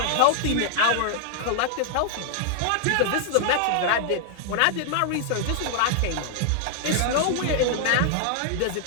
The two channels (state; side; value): different; both; correlation -0.01